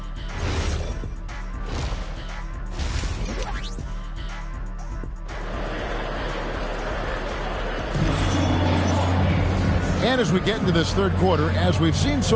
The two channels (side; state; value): both; identical; correlation 1.00